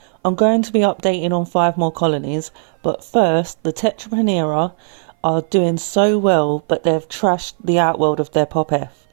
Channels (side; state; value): left; silent; 58 dB below the other